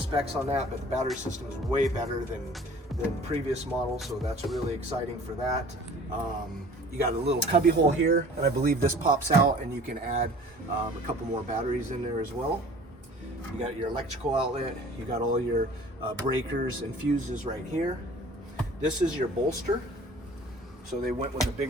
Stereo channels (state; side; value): normal; both; correlation 0.47